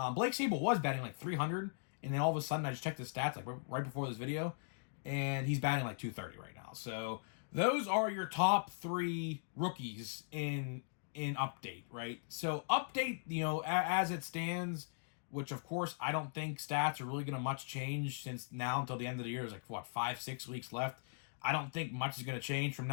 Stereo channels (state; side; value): silent; right; digital silence